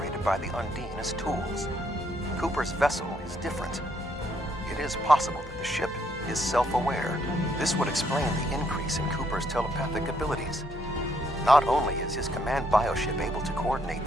by the Undine as tools. Cooper's vessel is different. It is possible that the ship is self-aware. This would explain the increase in Cooper's telepathic abilities. Not only is his command bioship able to coordinate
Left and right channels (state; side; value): normal; both; correlation 0.72